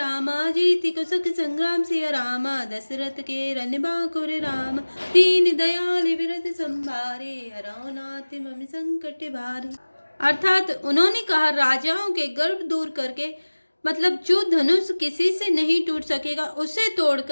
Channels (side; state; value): both; inverted; correlation -1.00